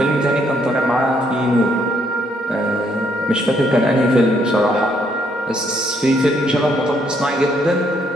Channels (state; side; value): normal; both; correlation 0.71